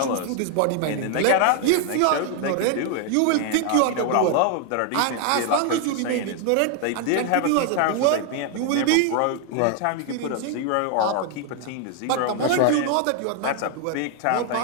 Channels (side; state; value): both; different; correlation 0.00